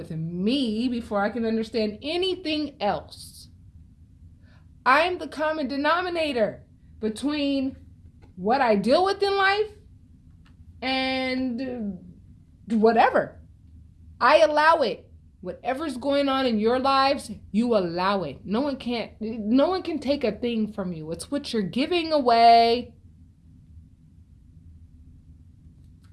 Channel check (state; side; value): identical; both; correlation 1.00